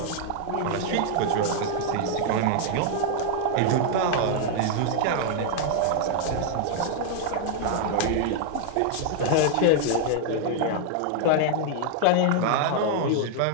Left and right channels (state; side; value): different; both; correlation 0.00